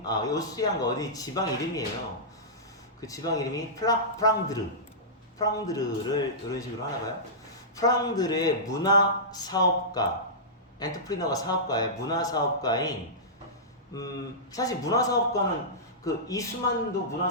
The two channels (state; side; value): normal; both; correlation -0.17